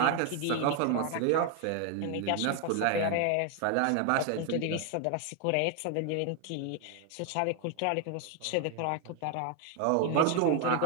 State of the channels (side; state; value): both; different; correlation 0.00